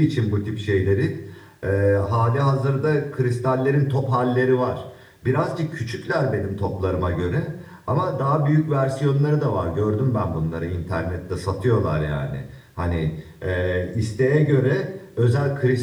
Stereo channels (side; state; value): both; identical; correlation 1.00